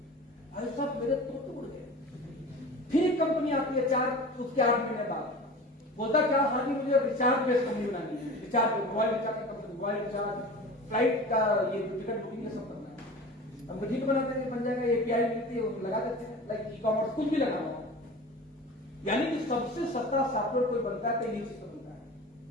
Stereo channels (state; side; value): normal; both; correlation 0.36